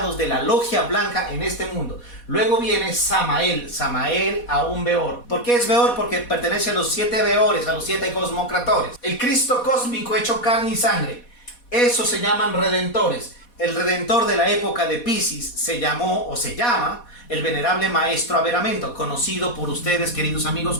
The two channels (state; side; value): late; right; 4.1 ms